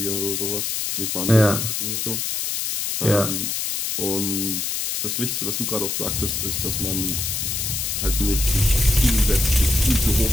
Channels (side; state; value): left; noise; hiss, 1 dB below the sound